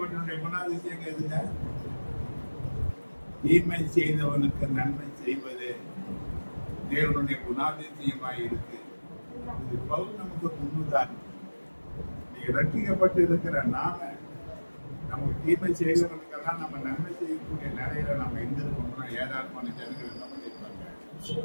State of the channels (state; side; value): inverted; both; correlation -1.00